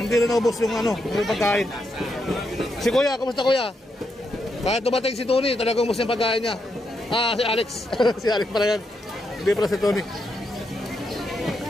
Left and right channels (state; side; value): normal; both; correlation 0.81